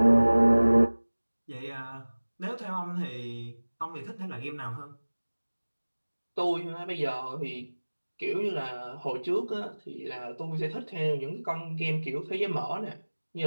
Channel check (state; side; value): inverted; both; correlation -1.00